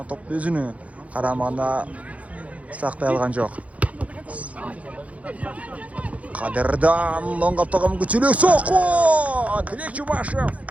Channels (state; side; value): late; left; 0.067 ms